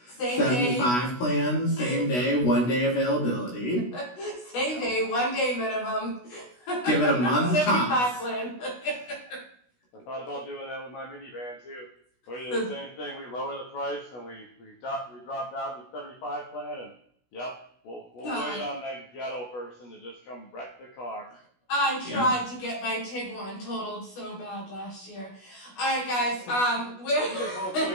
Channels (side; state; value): right; late; 16 ms